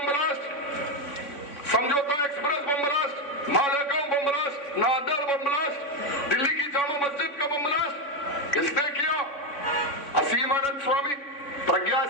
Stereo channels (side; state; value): right; late; 3.5 ms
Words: blast, Samjhauta express bomb blast, Malegaon bomb blast, नादर बम ब्लास्ट, दिल्ली की जामा मस्जिद का बम ब्लास्ट किसने किया? असीम आनंद स्वामी, प्रज्ञा